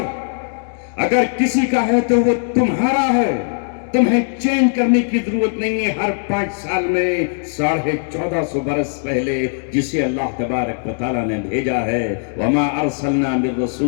اگر کسی کا ہے تو وہ تمہارا ہے. تمہیں چینج کرنے کی ضرورت نہیں ہے. ہر 5 سال میں 1450 برس پہلے جسے اللہ تبارک و تعالیٰ نے بھیجا ہے وَمَا أَرْسَلْنَا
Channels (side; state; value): right; silent; digital silence